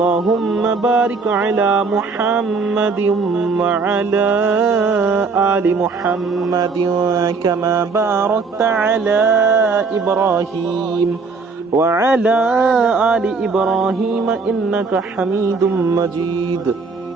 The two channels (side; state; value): left; quieter; 4.4 dB